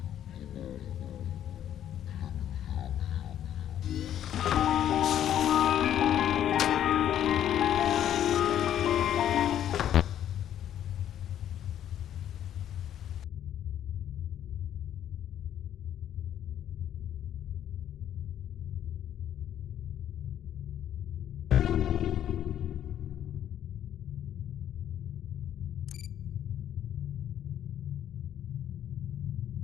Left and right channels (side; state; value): right; quieter; 10.7 dB